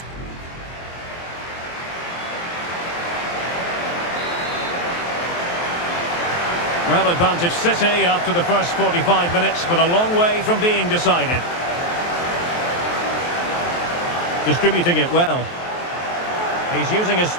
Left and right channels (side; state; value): right; late; 23 ms